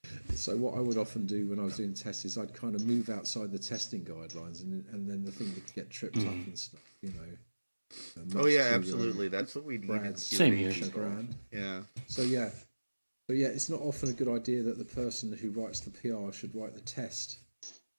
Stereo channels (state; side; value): inverted; both; correlation -1.00